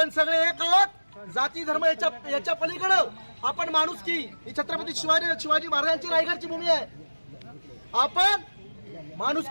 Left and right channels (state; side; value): inverted; both; correlation -1.00